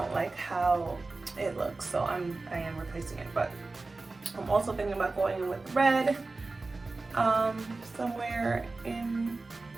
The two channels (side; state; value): left; quieter; 3.5 dB